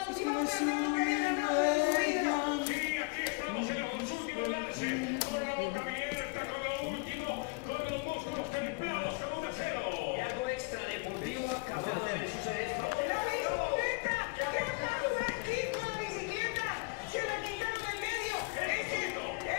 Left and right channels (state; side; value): quieter; right; 28.8 dB